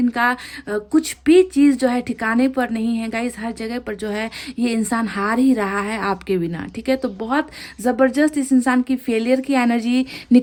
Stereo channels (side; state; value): both; identical; correlation 1.00